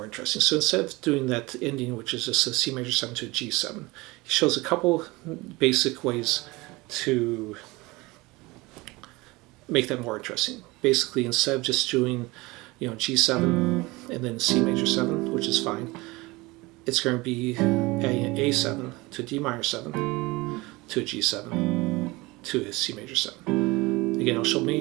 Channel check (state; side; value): quieter; left; 22.5 dB